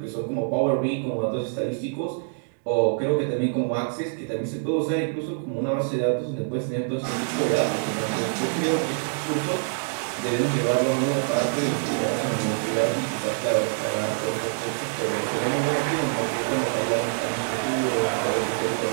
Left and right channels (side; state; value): left; silent; digital silence